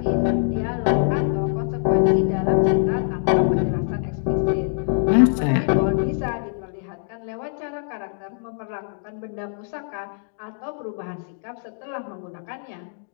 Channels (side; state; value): right; silent; digital silence